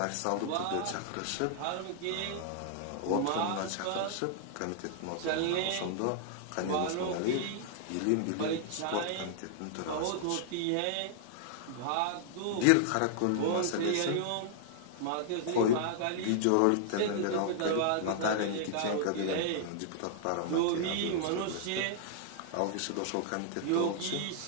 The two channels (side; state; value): both; different; correlation -0.01